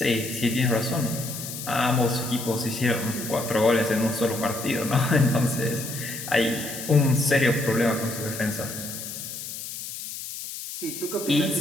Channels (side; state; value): left; noise; hiss, 9 dB below the sound